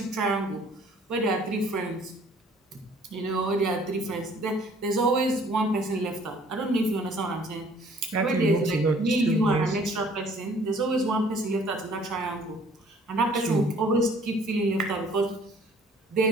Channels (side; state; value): both; normal; correlation 0.56